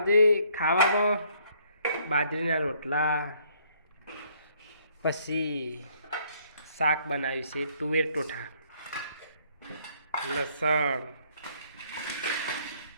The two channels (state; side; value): inverted; both; correlation -0.65